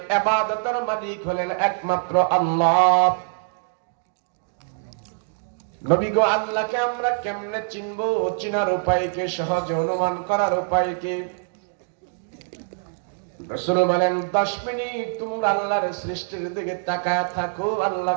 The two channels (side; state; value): left; silent; digital silence